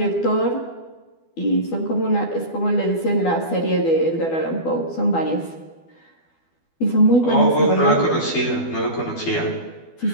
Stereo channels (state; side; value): late; right; 12 ms